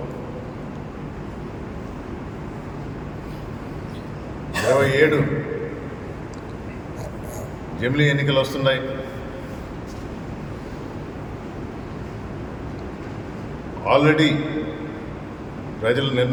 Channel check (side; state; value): both; identical; correlation 1.00